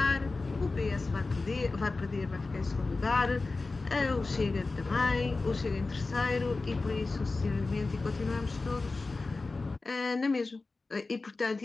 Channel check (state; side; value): quieter; right; 3.6 dB